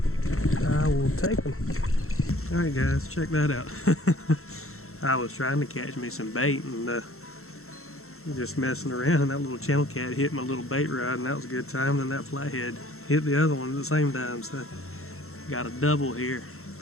I will take them. All right, guys, check that out. I was trying to catch me some bait and just messing around, and that little channel cat hit my little bait rod, and that was a good time. Then that flathead hit the other one at the same time, so got a double here.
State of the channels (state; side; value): late; right; 0.63 ms